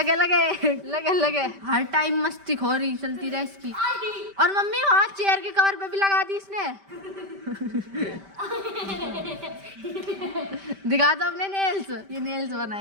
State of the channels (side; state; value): left; late; 5.1 ms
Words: लगे लगे लगे। हर टाइम मस्ती हो रही चलती रहे इसकी। और मम्मी वहाँ चेयर के कवर पे भी लगा दी इसने। दिखा दो अपने नेल्स, ये नेल्स